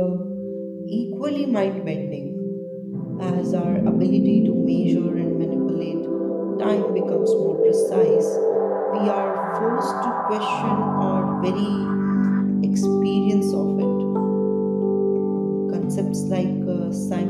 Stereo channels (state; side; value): identical; both; correlation 1.00